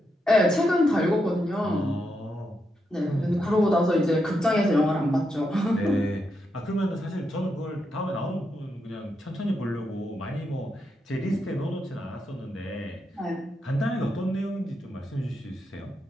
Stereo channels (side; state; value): both; normal; correlation 0.83